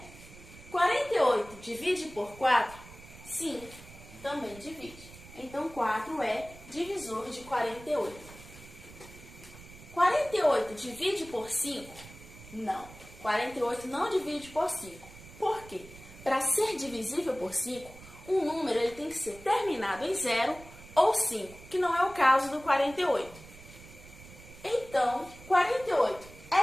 48 divide por 4? Sim, também divide. Então, 4 é divisor de 48. 48 divide por 5? Não. 48 não divide por 5. Por quê? Para ser divisível por 5, um número ele tem que ser terminado em 0 ou 5, que não é o caso do 48. Então, 48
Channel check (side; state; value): right; noise; rumble, 18 dB below the sound